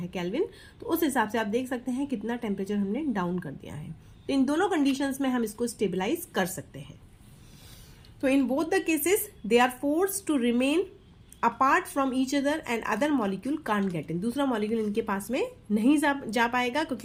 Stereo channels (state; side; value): identical; both; correlation 1.00